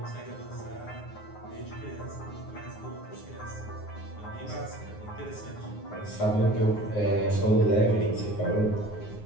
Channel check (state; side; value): late; right; 9.6 ms